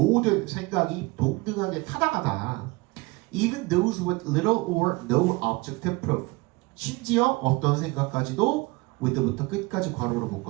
생각이 동등하게 타당하다. even those with little or no objective proof. 심지어 어떤 생각까지도 with부터 끝까지 괄호로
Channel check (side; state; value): left; quieter; 23.4 dB